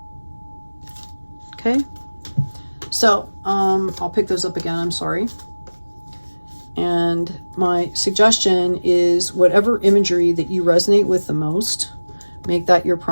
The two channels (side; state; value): both; inverted; correlation -1.00